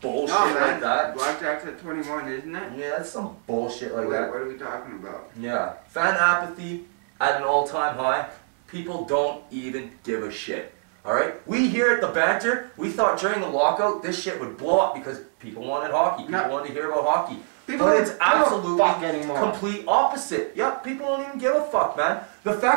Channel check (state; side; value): silent; left; 57 dB below the other